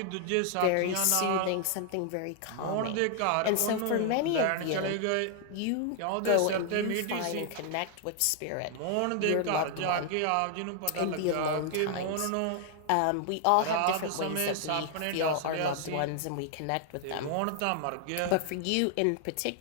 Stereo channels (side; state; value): both; different; correlation 0.00